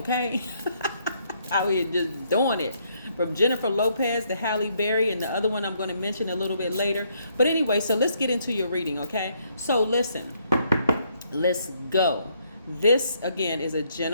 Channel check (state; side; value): inverted; both; correlation -0.71